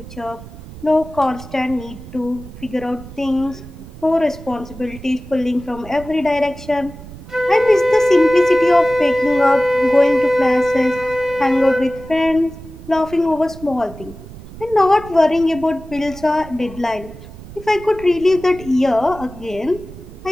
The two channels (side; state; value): right; noise; rumble, 16 dB below the sound